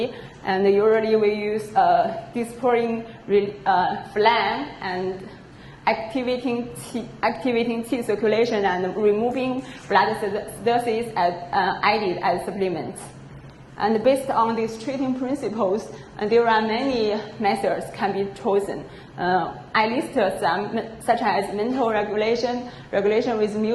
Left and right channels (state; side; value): identical; both; correlation 1.00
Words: And usually we use disporting phlegm and activating Qi circulation and removing blood stasis added as supplements. And based on these treating principles, there are many methods can be chosen. I listed some, such as mental regulation, regulation with